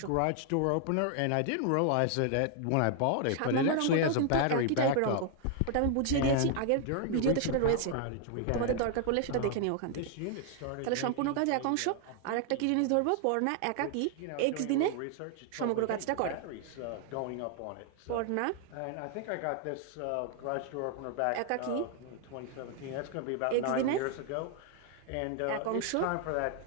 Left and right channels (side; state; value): both; different; correlation 0.00